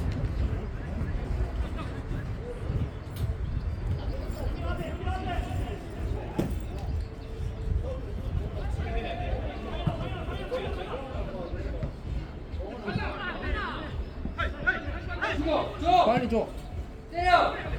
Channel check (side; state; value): both; identical; correlation 1.00